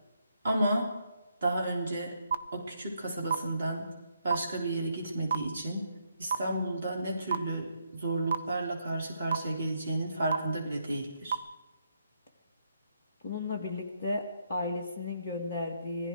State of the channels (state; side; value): inverted; both; correlation -0.75